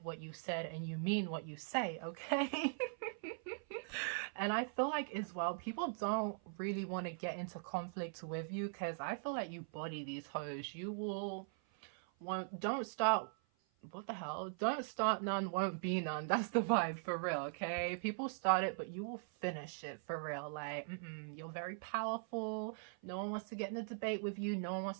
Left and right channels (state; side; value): silent; left; 50 dB below the other